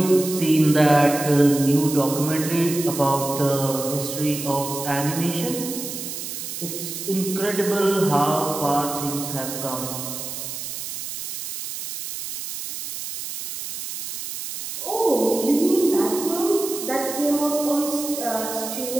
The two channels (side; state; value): right; noise; hiss, 7 dB below the sound